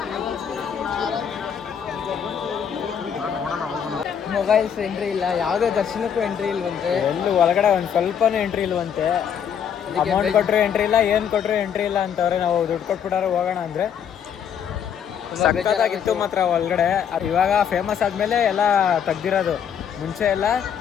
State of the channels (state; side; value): quieter; right; 8.2 dB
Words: ಮೊಬೈಲ್ಸ್ ಎಂಟ್ರಿ ಇಲ್ಲ, ಯಾವುದೇ ದರ್ಶನಕ್ಕೂ ಎಂಟ್ರಿ ಇಲ್ವಂತೆ. ಎಲ್ಲೂ ಒಳಗಡೆ ಒಂದು ಸ್ವಲ್ಪನೂ ಎಂಟ್ರಿ ಇಲ್ವಂತೆ. ಅಮೌಂಟ್ ಕೊಟ್ಟರು ಎಂಟ್ರಿ ಇಲ್ಲ, ಏನು ಕೊಟ್ಟರು ಎಂಟ್ರಿ ಇಲ್ಲ ಅಂತವ್ರೆ. ನಾವು ದುಡ್ಡು ಕೊಟ್ಬಿಟ್ಟಾರೆ ಹೋಗೋಣ ಅಂದರೆ ಸಕ್ಕತ್ತಾಗಿತ್ತು ಮಾತ್ರ ಒಳಗಡೆ. ಇವಾಗ ಫೇಮಸ್ ಆದಮೇಲೆ ಎಲ್ಲ ತೆಗ್ದಿರೋದು. ಮುಂಚೆ ಎಲ್ಲ